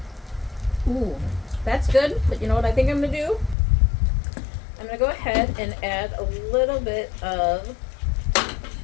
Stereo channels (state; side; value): drops out; right; at 3.6 s